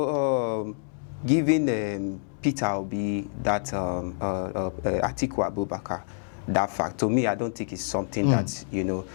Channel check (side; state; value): right; silent; 60 dB below the other